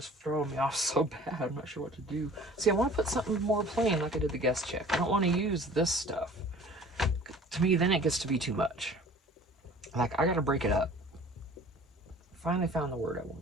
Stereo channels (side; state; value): both; normal; correlation 0.47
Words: throwing me off so bad. I'm not sure what to do. See, I want to put something more plain like I did the guest check. I don't want to use this stuff. To me, then it gets to be too much. Like, I got to break it up. Finally found the word I